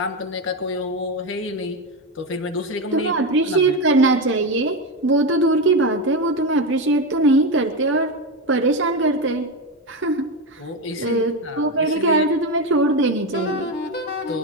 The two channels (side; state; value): both; normal; correlation 0.13